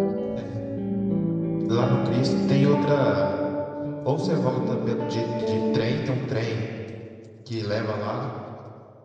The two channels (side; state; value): both; identical; correlation 1.00